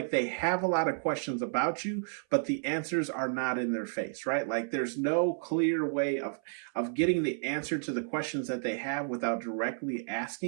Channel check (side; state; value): left; silent; 57 dB below the other